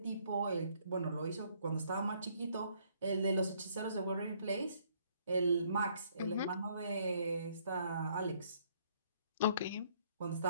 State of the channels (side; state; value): both; inverted; correlation -0.66